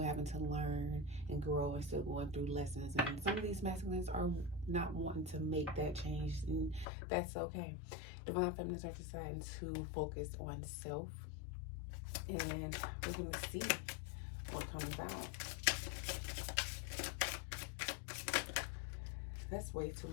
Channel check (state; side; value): drops out; right; at 6.9 s